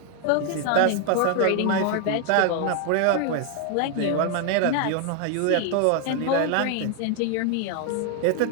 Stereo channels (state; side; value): different; both; correlation 0.00